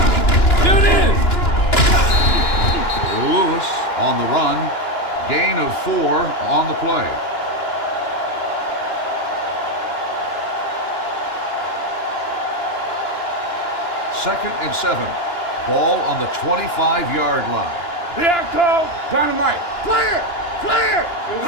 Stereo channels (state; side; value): late; right; 2.9 ms